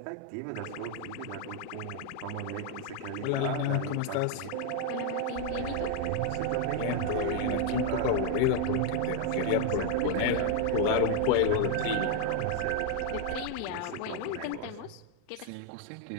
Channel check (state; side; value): different; both; correlation 0.00